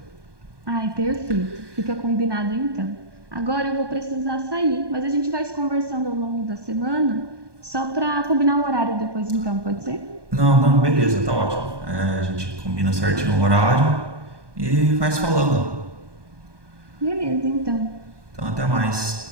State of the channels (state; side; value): late; left; 1.2 ms